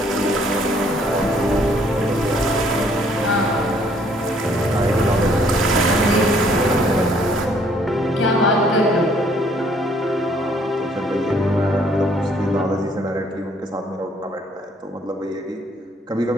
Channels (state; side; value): normal; both; correlation 0.63